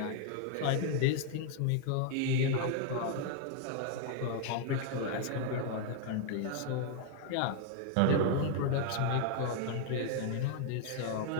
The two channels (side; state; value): both; different; correlation 0.00